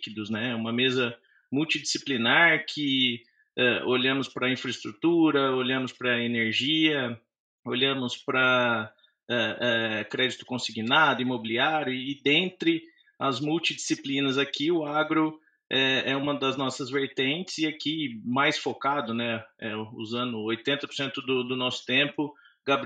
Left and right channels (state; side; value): identical; both; correlation 1.00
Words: né? Uma mesa multidisciplinar que olhamos para a infraestrutura, olhamos para a energia, olhamos para crédito consignado, imobiliário, e dentre as multidisciplinas aqui, o agro é uma das nossas vertentes, e aqui mais focado, né, usando 80% do nosso tempo,